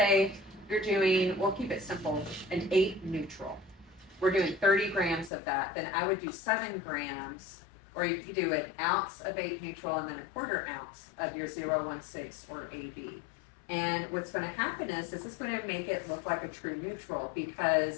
you're doing, we'll keep it simple, an 8 neutral. We're doing 30 grams of that. Then I would do 7 grams, or you could do an ounce of 8 neutral and then a quarter ounce of your 016 or AB. And what's going to happen is this is going to make it look like a true neutral,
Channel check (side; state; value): right; drops out; at 5.3 s